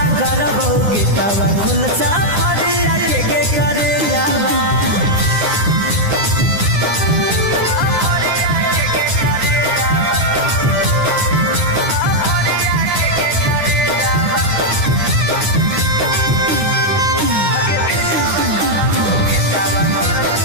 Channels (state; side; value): late; left; 9.7 ms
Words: करबौ गेटावा कुल सफरिया के गे करे जावा